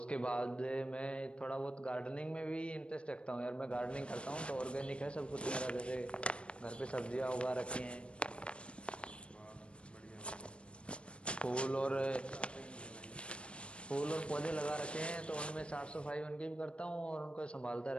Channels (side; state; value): right; late; 0.058 ms